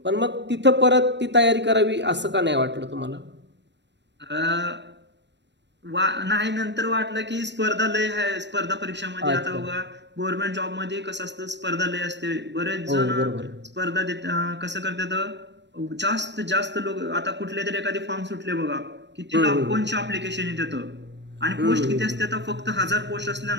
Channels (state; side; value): late; left; 0.51 ms